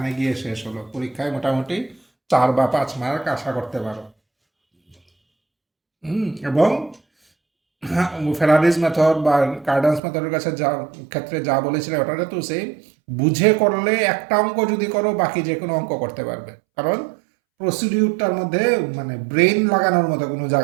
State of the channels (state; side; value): drops out; left; at 10.0 s